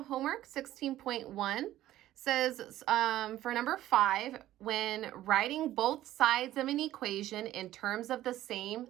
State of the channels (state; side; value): quieter; left; 14.0 dB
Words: homework. 16.1 says for number 5, when writing both sides of an equation in terms of the same